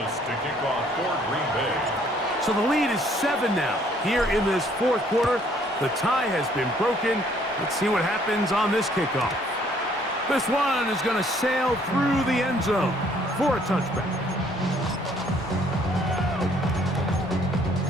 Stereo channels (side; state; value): both; normal; correlation 0.62